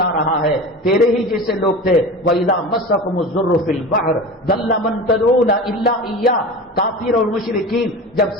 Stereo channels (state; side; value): normal; both; correlation 0.32